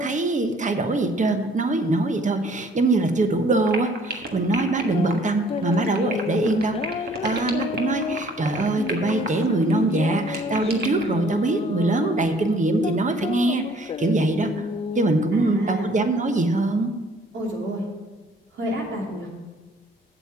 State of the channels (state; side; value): normal; both; correlation 0.58